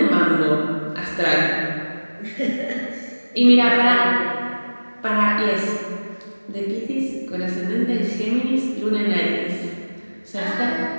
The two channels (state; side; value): inverted; both; correlation -1.00